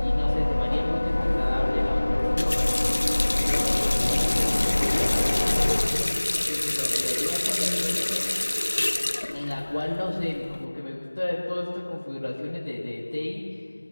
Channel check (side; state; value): both; inverted; correlation -1.00